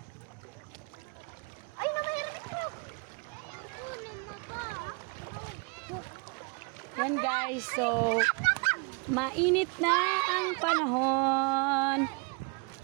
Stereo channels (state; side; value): quieter; left; 32.2 dB